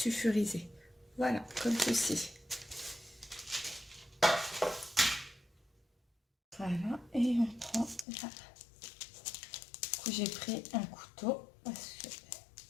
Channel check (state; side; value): drops out; right; at 8.1 s